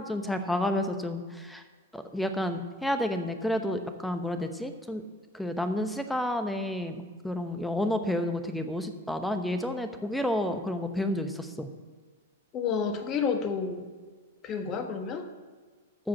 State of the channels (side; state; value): both; normal; correlation 0.60